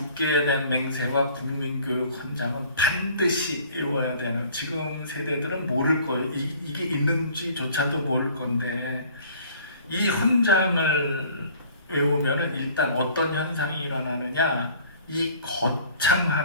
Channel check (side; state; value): both; inverted; correlation -0.51